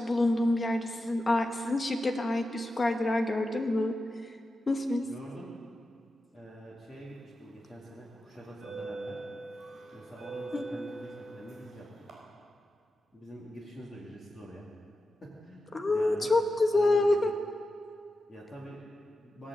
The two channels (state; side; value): normal; both; correlation 0.91